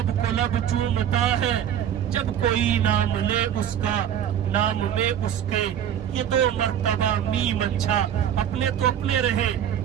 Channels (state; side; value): quieter; left; 9.8 dB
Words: کو لب چومتا ہے جب کوئی نام لے اس کا، نام میں اس کے یہ دو مرتبہ میم اچھا۔ اپنے تو اپنے رہے،